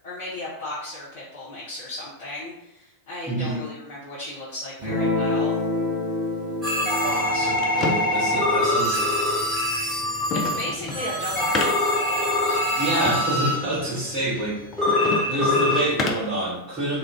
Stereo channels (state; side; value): normal; both; correlation 0.06